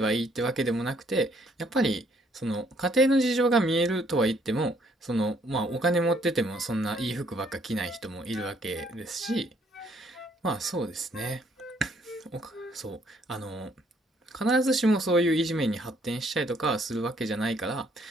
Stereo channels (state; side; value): normal; both; correlation 0.66